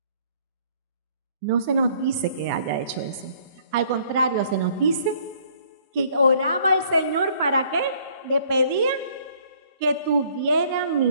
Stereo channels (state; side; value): inverted; both; correlation -0.61